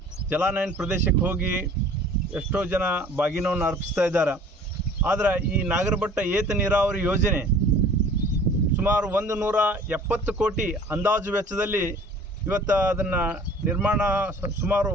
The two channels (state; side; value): normal; both; correlation 0.49